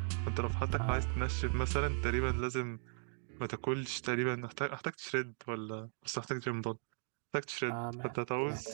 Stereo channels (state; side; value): silent; left; 53 dB below the other